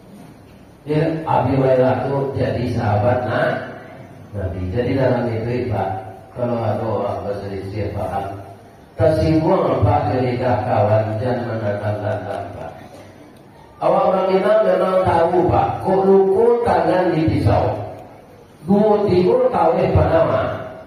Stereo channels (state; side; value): identical; both; correlation 1.00